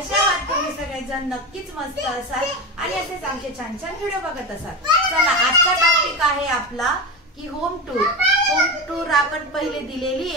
आहात तुम्ही सगळेजण? नक्कीच मस्त असाल आणि असेच आमचे छान छान व्हिडिओ बघत असाल. चला, आजचा टॉपिक आहे आपला की होम टूर. होम टूर आपण पहिले दिलेली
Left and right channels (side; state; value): both; normal; correlation 0.21